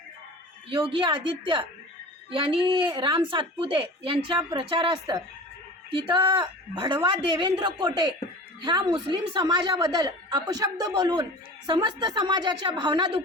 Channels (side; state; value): both; normal; correlation 0.37